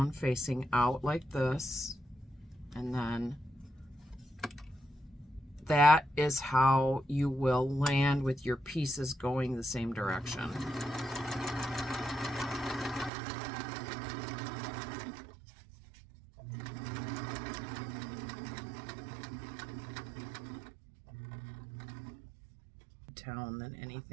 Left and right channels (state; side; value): drops out; left; at 13.1 s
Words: facing out like this, and then that is how you will land with your pieces going the same direction. Than